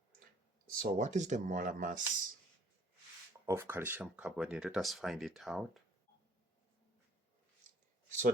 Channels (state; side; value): normal; both; correlation 0.57